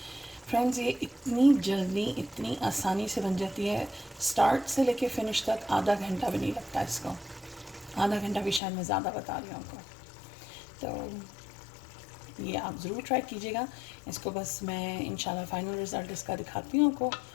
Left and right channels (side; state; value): right; drops out; at 8.6 s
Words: फ्रेंड्स, ये इतनी जल्दी इतनी आसानी से बन जाती है, स्टार्ट से लेके फिनिश तक आधा घंटा भी नहीं लगता इसको। आधा घंटा भी शायद मैं ज़्यादा बता रही हूँ आपको। तो ये आप ज़रूर ट्राई कीजिएगा इसको। बस मैं इंशाल्लाह फ़ाइनल रिज़ल्ट इसका दिखाती हूँ आपको